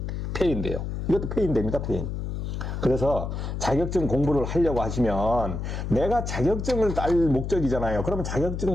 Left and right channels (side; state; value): left; noise; hum, 4 dB below the sound